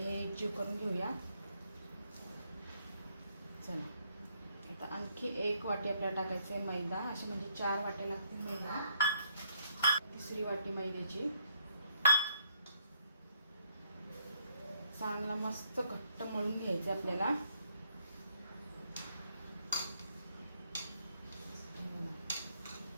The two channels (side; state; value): both; inverted; correlation -0.71